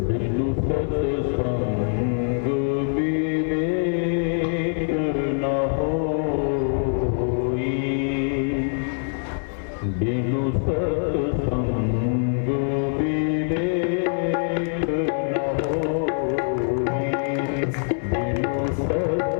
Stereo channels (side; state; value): right; silent; 61 dB below the other